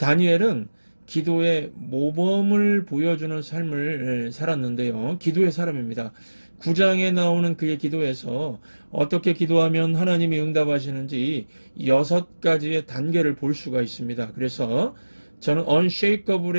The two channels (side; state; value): both; inverted; correlation -1.00